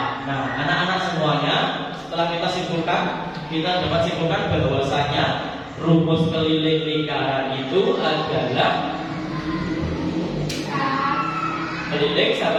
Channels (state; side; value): identical; both; correlation 1.00